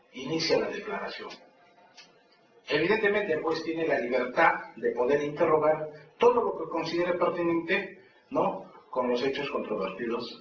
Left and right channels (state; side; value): identical; both; correlation 1.00